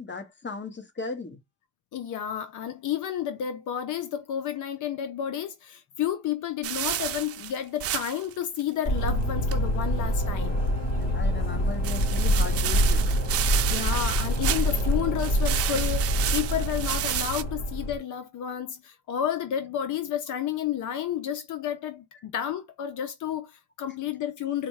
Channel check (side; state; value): both; normal; correlation 0.31